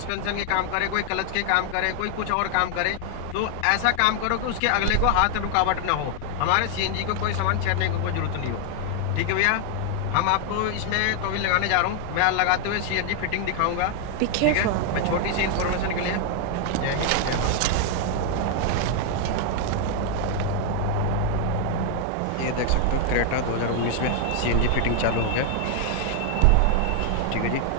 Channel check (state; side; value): different; both; correlation 0.00